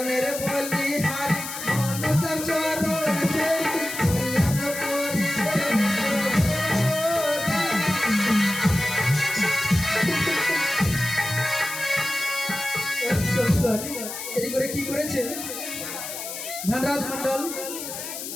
বলি হারি, মনসার চরণ দেই, কল্যাণ করিবে এদিক করে কি করেছে ধনরাজ মন্ডল,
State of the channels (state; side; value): noise; left; hiss, 8 dB below the sound